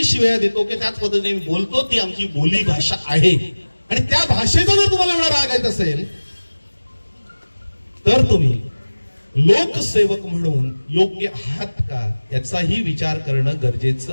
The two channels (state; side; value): inverted; both; correlation -1.00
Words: शिव्या देतो की त्याच पद्धतीने बोलतो. ती आमची बोली भाषा आहे आणि त्या भाषेचा जर तुम्हाला एवढा राग येत असेल तर तुम्ही लोकसेवक म्हणून योग्य आहात का याचाही विचार करणं